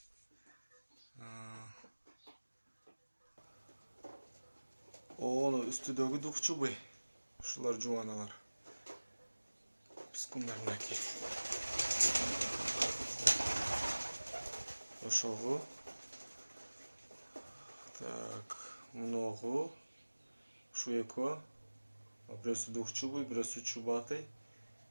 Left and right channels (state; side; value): inverted; both; correlation -1.00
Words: Оны үстүдөгү двухчубый. Ушулар жубаналар. Пискундарнаки. Ошого. Так, мыногу ушу экөө. Бирөөсү двухчубый, бирөөсү чубатый.